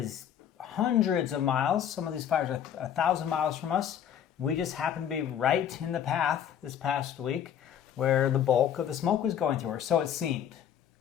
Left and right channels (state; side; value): quieter; right; 9.4 dB